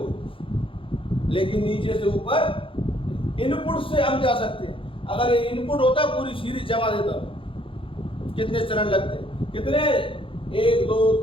लेकिन नीचे से ऊपर इनपुट से हम जा सकते हैं। अगर ये इनपुट होता पूरी सीरीज जमा देता, कितने चरण लगते, कितने, 1 2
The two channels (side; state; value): right; late; 0.26 ms